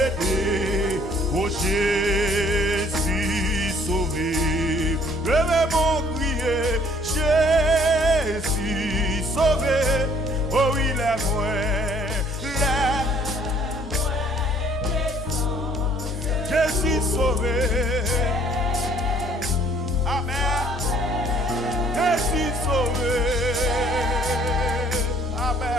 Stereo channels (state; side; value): normal; both; correlation 0.59